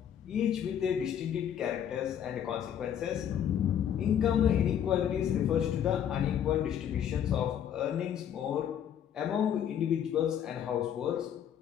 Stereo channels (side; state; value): right; quieter; 9.4 dB